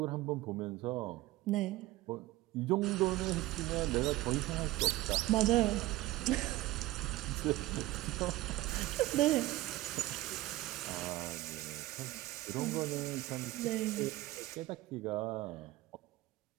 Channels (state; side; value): quieter; left; 17.4 dB